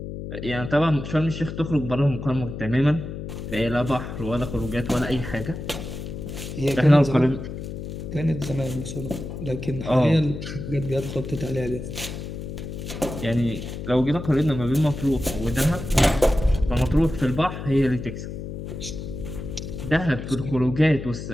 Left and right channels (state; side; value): noise; left; hum, 8 dB below the sound